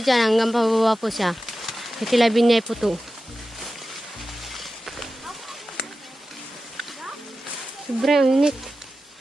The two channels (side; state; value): both; normal; correlation 0.93